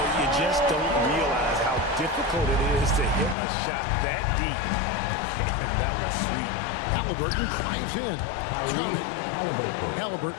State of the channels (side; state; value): right; drops out; at 3.4 s